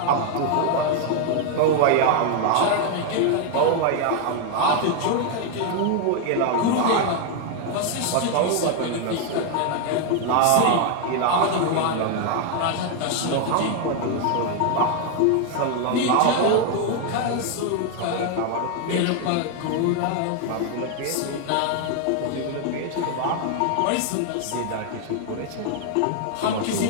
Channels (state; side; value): different; both; correlation 0.00